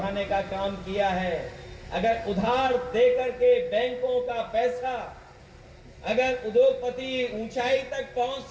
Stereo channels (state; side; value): identical; both; correlation 1.00